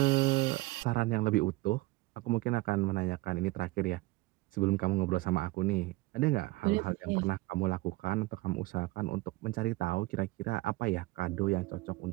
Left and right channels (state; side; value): quieter; left; 20.4 dB